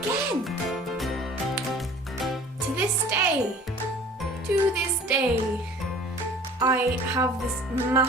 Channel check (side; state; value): both; normal; correlation 0.48